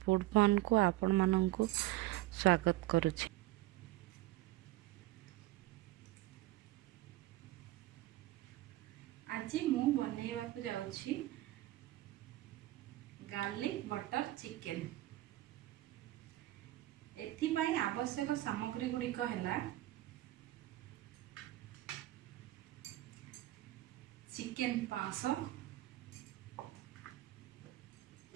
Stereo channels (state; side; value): quieter; left; 16.7 dB